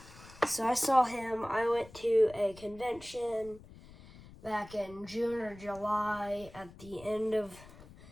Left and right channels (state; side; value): noise; left; rumble, 20 dB below the sound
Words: So I saw him. I went to a convention back in June or July. At the end of,